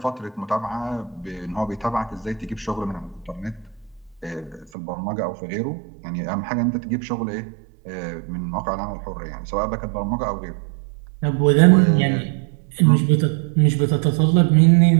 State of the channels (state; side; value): drops out; left; at 4.7 s